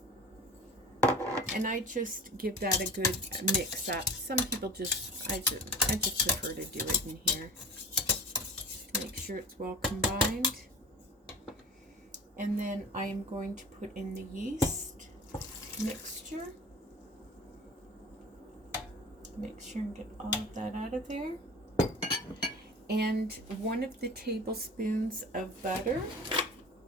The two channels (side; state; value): both; normal; correlation 0.37